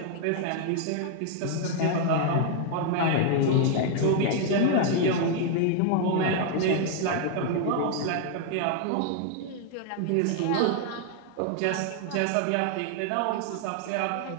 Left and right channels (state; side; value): different; both; correlation 0.00